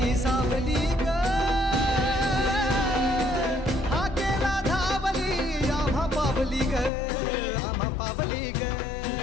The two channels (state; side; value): drops out; right; at 6.9 s